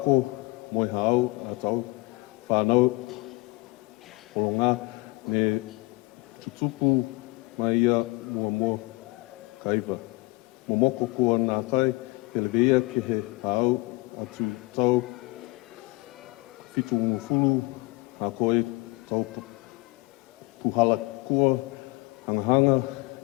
moe hao, a tau, whanau, kolonga, ne ki tupu mai ia mo kaiwa. Mo moko kua nā tai, pere mea ke he hao, atu tau, whitu umuwhulu, a koe, tau puhala kua, hangahanga,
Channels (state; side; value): quieter; right; 23.6 dB